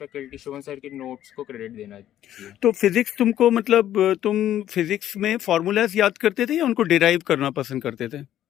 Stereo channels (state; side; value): quieter; right; 11.9 dB